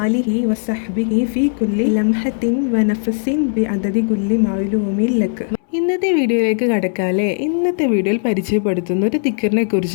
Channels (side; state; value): right; silent; 68 dB below the other